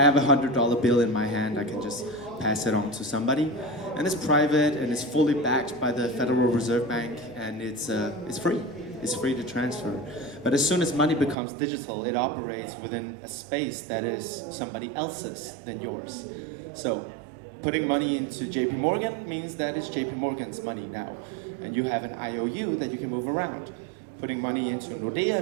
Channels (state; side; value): drops out; left; at 11.4 s